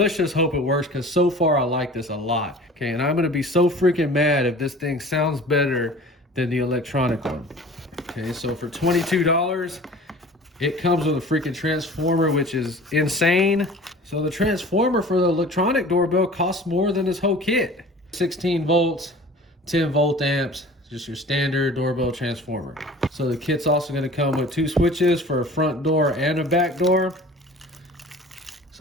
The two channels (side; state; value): both; normal; correlation 0.43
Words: just hope it works, because so far I like this a lot. Okay, and I'm gonna be so freaking mad if this thing sounds better than the electronic one. Okay, so for $22, it comes with a freaking transformer, which is insane. So the transformer for the electronic doorbell costs more than this whole kit. 16 volts, 10 volt amps, just your standard doorbell transformer. So the kit's also gonna come with two switches for a front door and a back door.